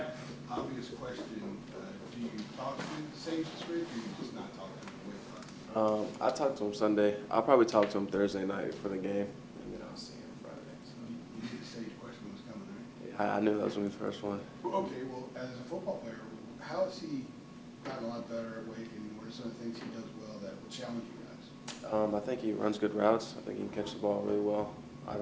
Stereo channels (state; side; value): identical; both; correlation 1.00